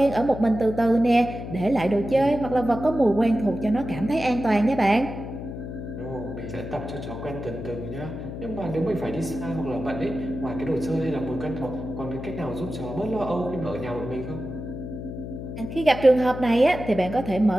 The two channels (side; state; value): left; noise; hum, 8 dB below the sound